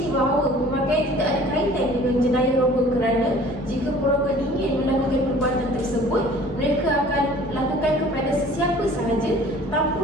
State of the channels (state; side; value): normal; both; correlation 0.49